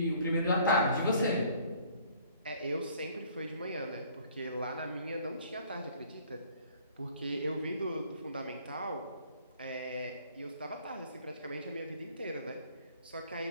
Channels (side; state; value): both; inverted; correlation -0.57